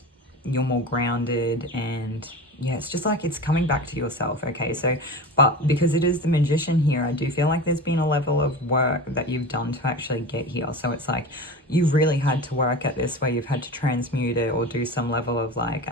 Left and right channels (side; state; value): both; normal; correlation 0.30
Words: you're more grounded, and yeah, it's just like it's coming back to yourself. Okay, so but because it is the magician here, I do feel like there's been a level of work that you've done to actually get here. So it's like you've really had to work at this, where you've had to transmute it or do some level of like